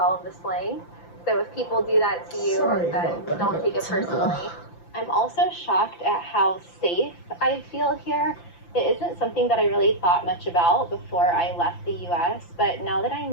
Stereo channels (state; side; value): late; right; 5.9 ms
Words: of the slang. So if people do that to you, then don't take it personally. I'm also shocked at how safe I feel here. It isn't something that I really thought much about before I left the US, but now that